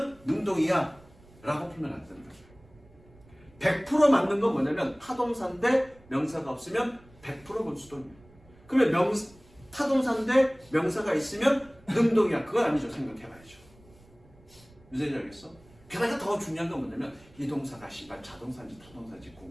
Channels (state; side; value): noise; right; rumble, 26 dB below the sound